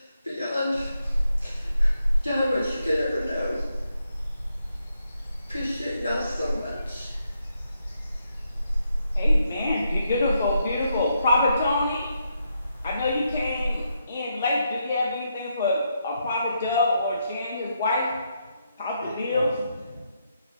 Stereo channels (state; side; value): inverted; both; correlation -0.80